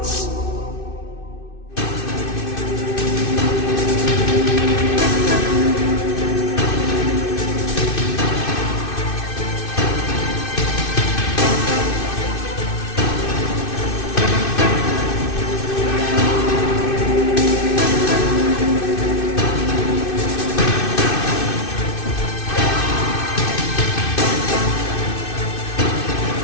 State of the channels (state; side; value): late; right; 2.6 ms